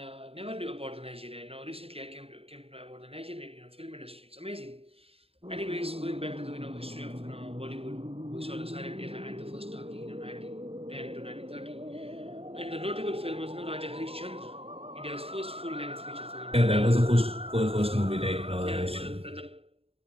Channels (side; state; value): left; late; 0.28 ms